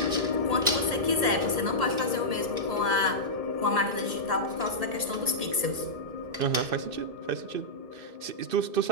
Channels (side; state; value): left; late; 1.8 ms